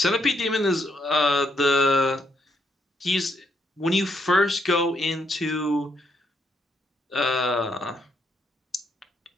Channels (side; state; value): both; normal; correlation 0.76